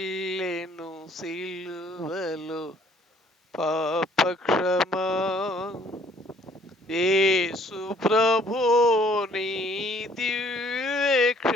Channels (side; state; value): both; normal; correlation 0.59